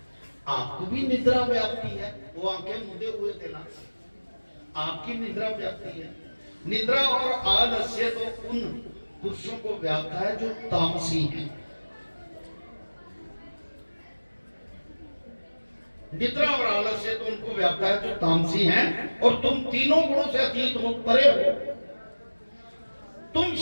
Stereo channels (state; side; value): inverted; both; correlation -1.00